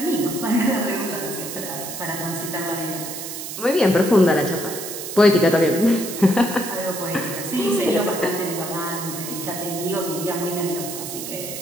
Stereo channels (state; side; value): noise; right; hiss, 8 dB below the sound